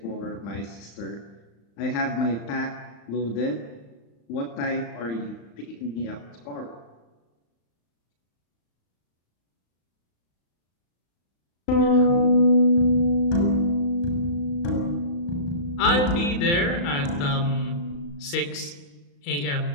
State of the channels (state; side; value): late; right; 35 ms